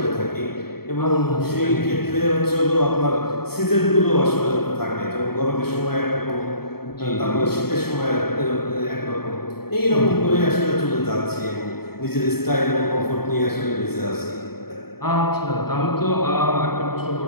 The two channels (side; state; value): right; late; 0.95 ms